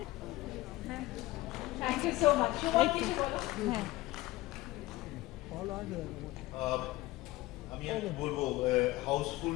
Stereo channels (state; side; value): quieter; right; 18.5 dB